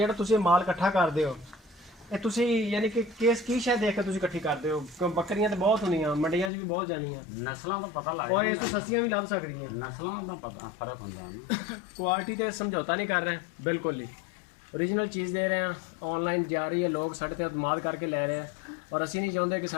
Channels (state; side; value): drops out; right; at 6.5 s